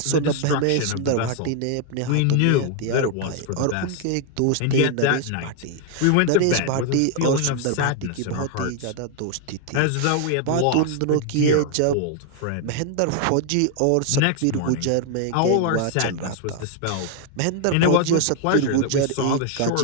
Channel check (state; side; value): different; both; correlation 0.00